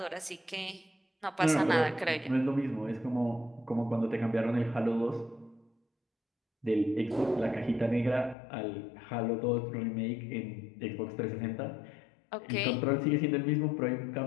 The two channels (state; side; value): drops out; right; at 8.3 s